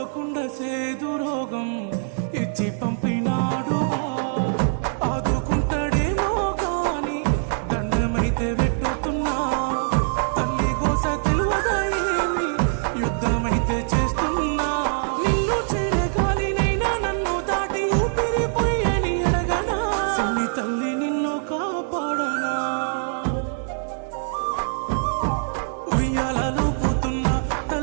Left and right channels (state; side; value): silent; left; 63 dB below the other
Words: సేదు రోగం ఇచ్చి పంపినాడుగా ఆదుకుంటాడేమో గాని దండమైతే వెట్టుతున్నా తల్లి గోస తెలువగా ఏమి యుద్ధమైతే చేస్తున్నా నిన్ను చేరగాలినైనా నన్ను దాటి ఊపిరిపోయని అడగనా సిన్ని తల్లి నిన్ను కాపాడనా ఉయ్యాలలో పోతున్న